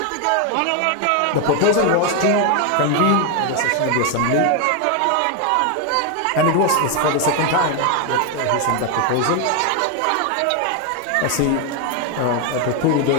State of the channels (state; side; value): different; both; correlation 0.01